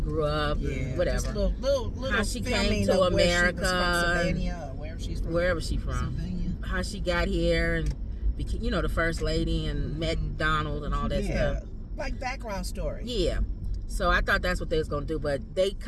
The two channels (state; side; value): identical; both; correlation 1.00